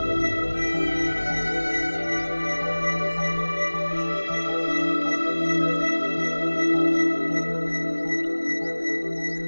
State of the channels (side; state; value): both; inverted; correlation -1.00